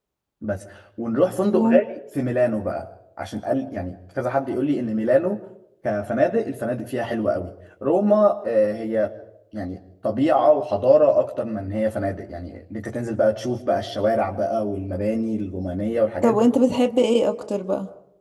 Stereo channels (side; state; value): both; identical; correlation 1.00